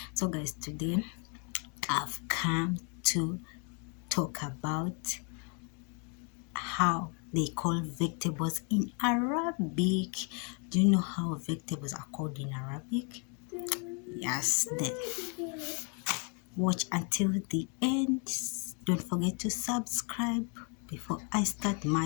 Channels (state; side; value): quieter; right; 37.3 dB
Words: So, guys, today I've come to talk about how they call vegetables in Arabic. Do you know how vegetables are called in Arabic? Yes, then watch until the end. Don't forget to subscribe. Before I start